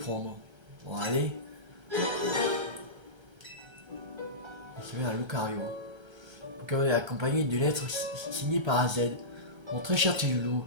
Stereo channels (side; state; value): left; late; 1.3 ms